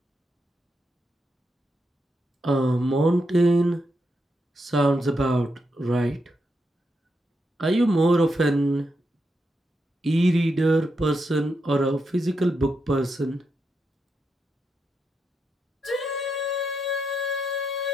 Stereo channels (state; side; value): normal; both; correlation 0.83